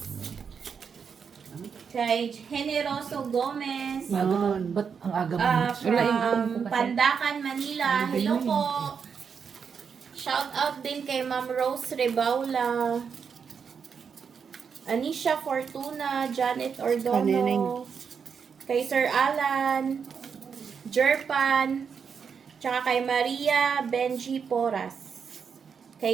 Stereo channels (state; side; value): quieter; left; 6.4 dB